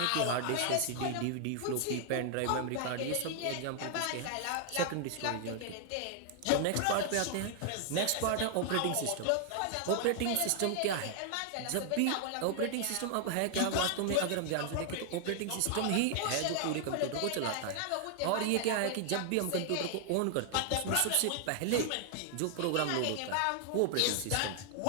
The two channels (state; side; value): different; both; correlation 0.00